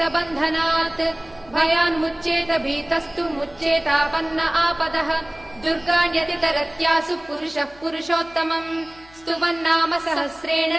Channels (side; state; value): left; noise; hum, 26 dB below the sound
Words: बन्धनात् भयान्मुच्येत भीतस्तु मुच्येतापन्न आपदः दुर्गाण्यतितरत्यासु पुरुषः पुरुषोत्तमम् स्तुवन्नाम सहस्रेण